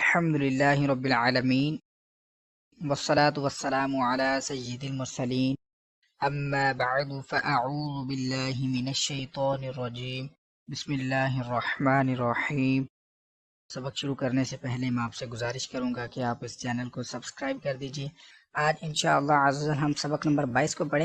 रब्बिल आलमीन वस्सलातु वस्सलामु अला सय्यिदिल मुरसलीन अम्मा बअदु फ़अऊज़ु बिल्लाहि मिनश शैतानिर रजीम बिस्मिल्लाहिर रहमानिर रहीम। सबक शुरू करने से पहले मैं आपसे गुजारिश करूंगा कि आप इस चैनल को सब्सक्राइब कर दीजिए। आज इंशाअल्लाह अज़्ज़ल हम सबक नंबर 22 को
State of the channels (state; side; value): identical; both; correlation 1.00